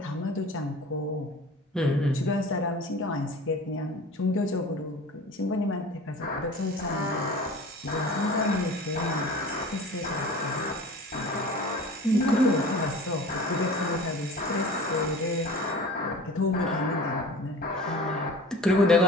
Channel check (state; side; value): normal; both; correlation 0.40